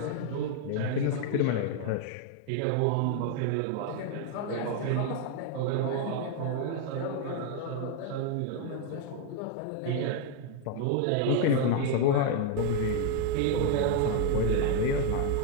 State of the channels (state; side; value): different; both; correlation 0.00